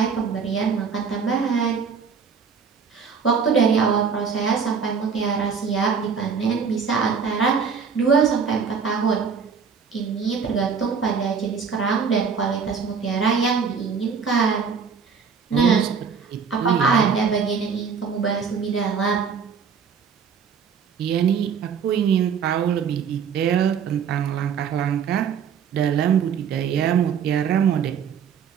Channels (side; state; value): left; quieter; 6.3 dB